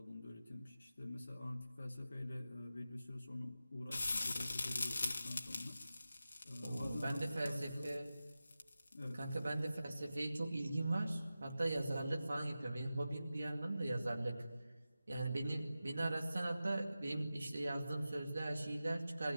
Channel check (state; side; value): inverted; both; correlation -0.94